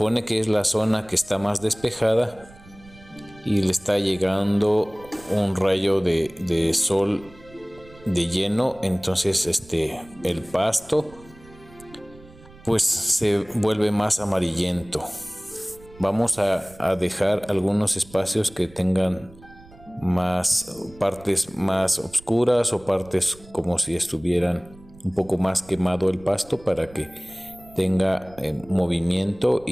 que es la zona que está más despejada y le está llegando un rayo de sol de lleno. Entonces el pasto pues se vuelve más amarillento. Vamos a dejar algunos espacios que tengan más partes más oscuras o partes como si estuvieran un poco más quemado el pasto, para que tenga movimiento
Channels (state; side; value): noise; right; rumble, 23 dB below the sound